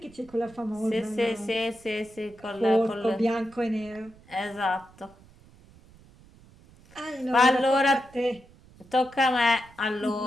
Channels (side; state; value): right; noise; rumble, 25 dB below the sound